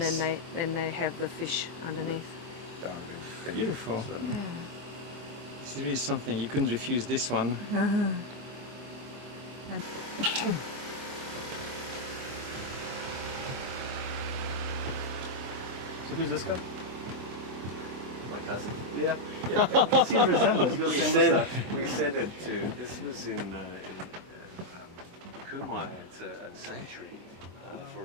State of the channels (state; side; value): late; left; 24 ms